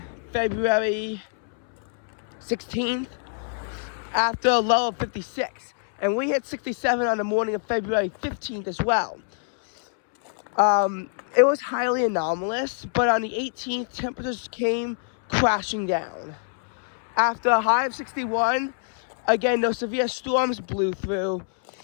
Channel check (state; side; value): silent; right; 62 dB below the other